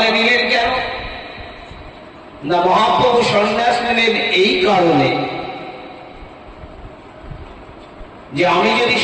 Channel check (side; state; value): both; identical; correlation 1.00